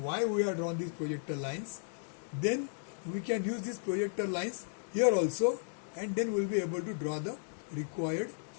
we have drawn these projector lines, then we can use these projector lines here also, and then we'll be able to draw the required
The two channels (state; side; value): silent; right; digital silence